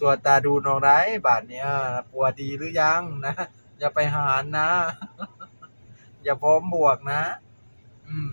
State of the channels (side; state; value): both; inverted; correlation -1.00